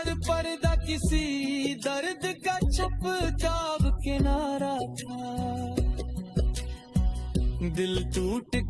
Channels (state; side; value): identical; both; correlation 1.00